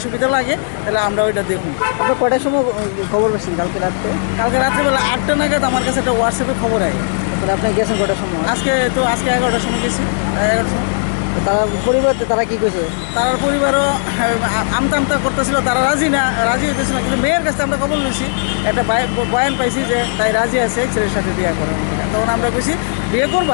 সুবিধা লাগে তাহলে আমরা ওইটা দেখুন। আপনার কয়টার সময় খবর পেয়েছেন কালকে রাত্রে? কালকে রাত্রেবেলা 8টা নাগাদ আমার কাছে একটা হোয়াটসঅ্যাপে খবর আয়। তাহলে আপনি গেছেন কয়টার সময়? আজকে 11টার সময় গেছি। 11টার সময় তারা পরিবার তারা কি কইছে? তার পরিবারও আমতা করতেছিল, তারা রাজি হইতেছিল না। কিন্তু মেয়ের কাছে আমরা খবর নিয়েছি, একটা বয়ান পাইছি যে তাই রাজি আছে ছেলের সাথে বিয়ে করার। তখন আমরা কইছি বিয়ে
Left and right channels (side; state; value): right; silent; digital silence